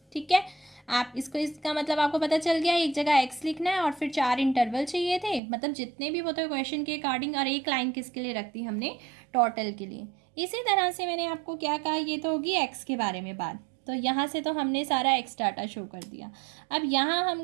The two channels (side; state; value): left; drops out; at 5.4 s